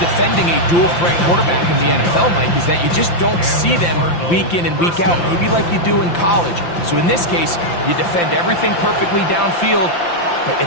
a dual-threat quarterback in the NFL, Mike, is that you just don't see them week in and week out, maybe like you do in college. So in this case, you defend everything perfectly downfield, but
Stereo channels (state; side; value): late; right; 5.8 ms